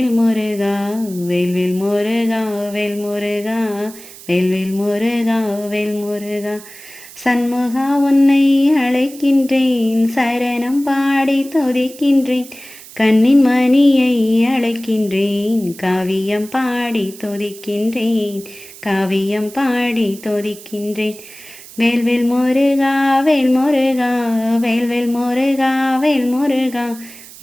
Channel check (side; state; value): right; noise; hiss, 18 dB below the sound